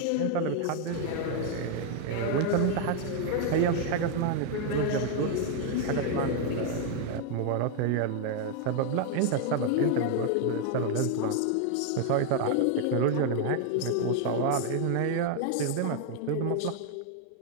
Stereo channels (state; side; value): different; both; correlation 0.00